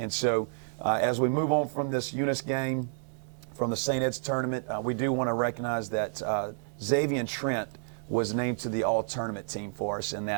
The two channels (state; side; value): silent; left; 58 dB below the other